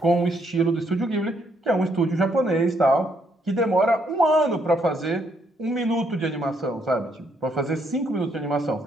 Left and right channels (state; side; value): normal; both; correlation 0.73